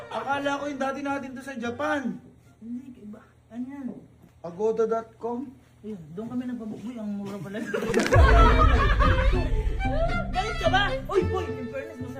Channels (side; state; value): both; identical; correlation 1.00